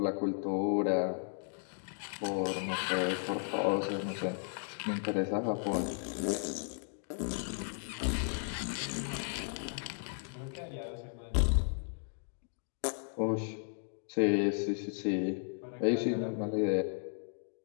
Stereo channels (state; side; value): silent; right; 54 dB below the other